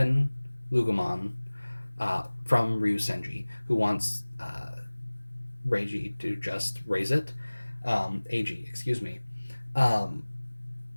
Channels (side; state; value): both; inverted; correlation -1.00